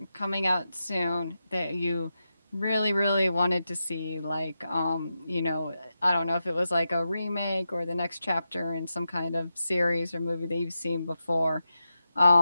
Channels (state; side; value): inverted; both; correlation -0.89